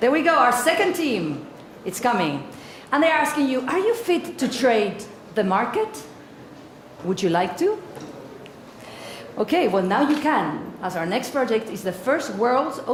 we go, our second team. It's coming. And they're asking you, are you fit to trade the market? Would you like to? Okay, well now you can, as our next project is the first world's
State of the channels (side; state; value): both; identical; correlation 1.00